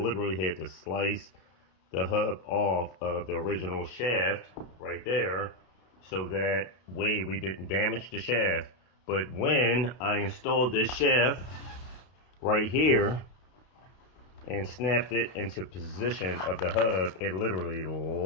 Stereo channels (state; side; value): late; right; 32 ms